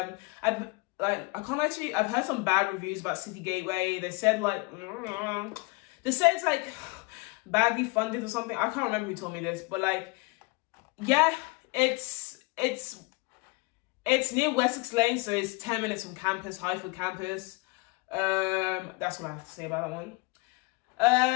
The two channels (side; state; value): right; quieter; 27.3 dB